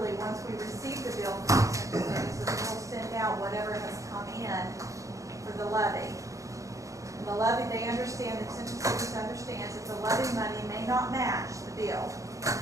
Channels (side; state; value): left; late; 0.16 ms